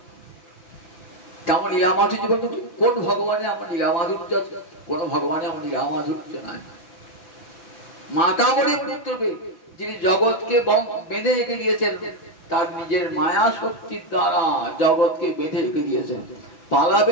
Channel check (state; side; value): late; right; 6.0 ms